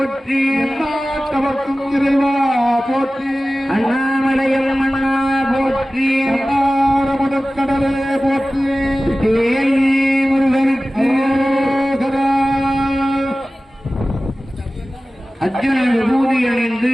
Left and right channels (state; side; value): normal; both; correlation 0.96